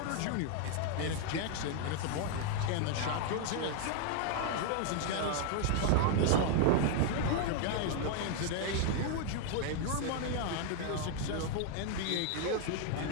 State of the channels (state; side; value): different; both; correlation 0.00